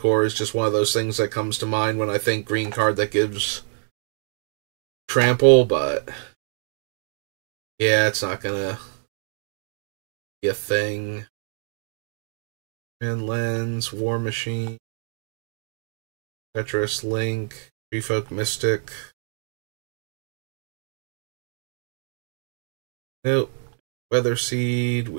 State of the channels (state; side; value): silent; left; digital silence